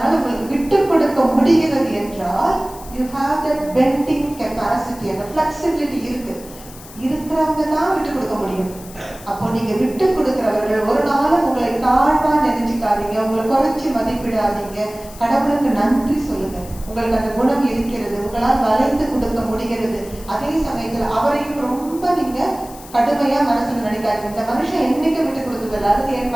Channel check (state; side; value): noise; left; hiss, 18 dB below the sound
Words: உங்களுக்கு விட்டு கொடுக்க முடிகிறது என்றால் you have that bending capacity, அந்த flexibility இருக்கு. இருக்கிறவங்க தான் விட்டு கொடுக்க முடியும். அப்போ நீங்க விட்டு கொடுக்கிறவர்கள் ஒரு நாளும் உங்களை தாழ்வா நினைச்சுக்காதீங்க, உங்களை குறைச்சி மதிப்பிடாதீங்க. கடவுளுக்கு நன்றி சொல்லுங்க, உங்களுக்கு அந்த குணம் இருக்கிறது, உங்களால் வளைந்து கொடுக்க முடிகிறது. அதே சமயத்துல அவரையும் ரொம்ப நீங்க கடுமையா மனசுல நினைக்காதீங்க. இந்த மனுஷன் என்னைக்கு விட்டு கொடுத்ததில்லை, அல்லது என்